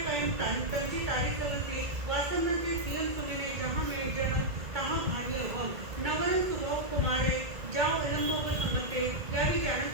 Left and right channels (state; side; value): late; left; 2.0 ms